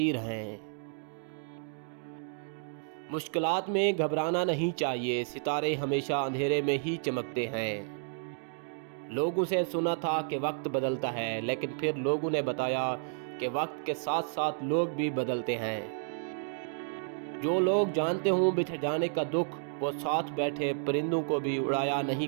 हैं। मुश्किलात में घबराना नहीं चाहिए, सितारे हमेशा अंधेरे में ही चमकते हैं। लोगों से सुना था कि वक्त बदलता है, लेकिन फिर लोगों ने बताया कि वक्त के साथ साथ लोग भी बदलते हैं। जो लोग जानते हों बिछड़ जाने का दुख, वो साथ बैठे परिंदों को भी उड़ाया नहीं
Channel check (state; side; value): silent; left; digital silence